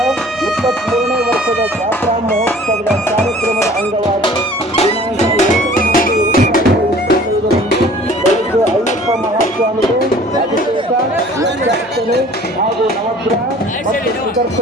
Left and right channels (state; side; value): noise; right; hum, 29 dB below the sound